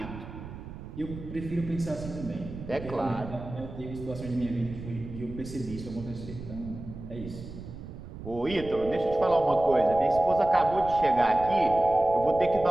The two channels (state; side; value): noise; right; rumble, 12 dB below the sound